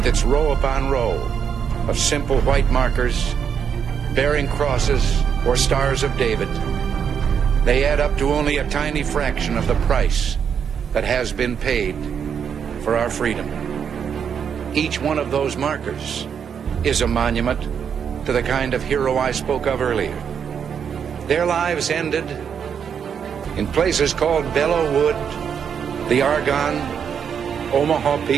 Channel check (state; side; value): quieter; left; 7.5 dB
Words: its row upon row of simple white markers bearing crosses or stars of David, they add up to only a tiny fraction of the price that has been paid for our freedom. Each one of those markers is a monument to the kind of hero I spoke of earlier. Their lives ended in places called Belleau Wood, the Argonne, Omaha